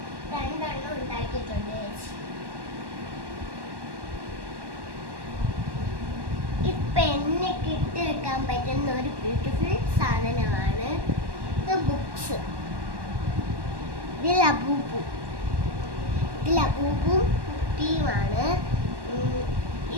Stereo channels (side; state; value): left; late; 1.1 ms